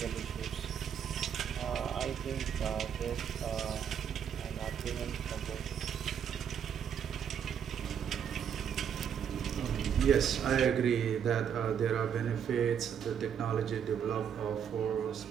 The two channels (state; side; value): quieter; left; 8.2 dB